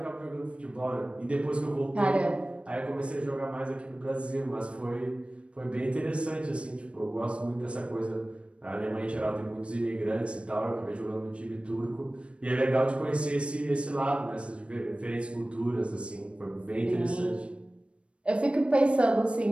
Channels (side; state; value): left; late; 0.059 ms